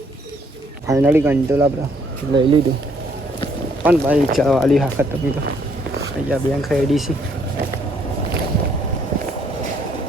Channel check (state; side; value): normal; both; correlation 0.67